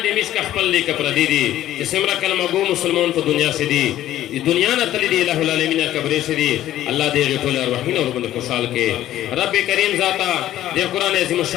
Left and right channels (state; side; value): quieter; right; 13.2 dB